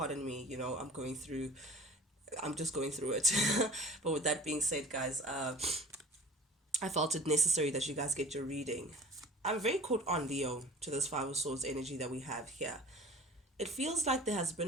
me. I'm just going through it. But with that being said, guys, I felt it necessary that you guys get your reading. I'm very caught on, Leo, to this Five of Swords energy that we have here. It feels like there has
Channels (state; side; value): normal; both; correlation 0.42